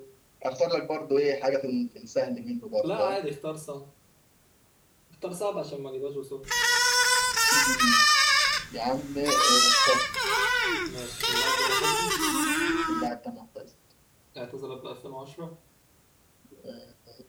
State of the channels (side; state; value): both; identical; correlation 1.00